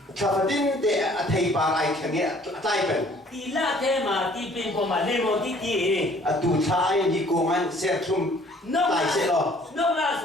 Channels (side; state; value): both; normal; correlation 0.57